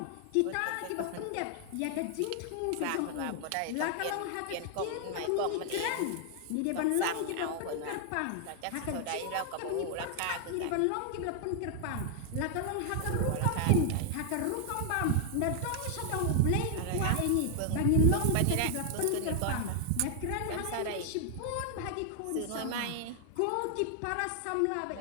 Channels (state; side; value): different; both; correlation 0.00